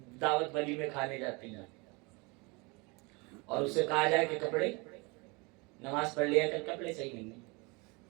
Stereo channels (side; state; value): left; quieter; 28.0 dB